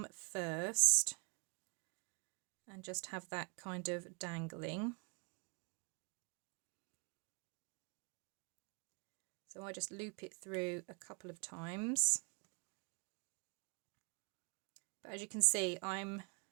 first and just have that kind of dangling. So I just loop it through a couple of times. But as you can see, I'm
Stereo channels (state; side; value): quieter; left; 33.8 dB